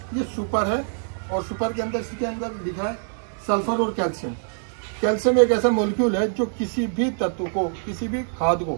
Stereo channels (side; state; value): left; silent; digital silence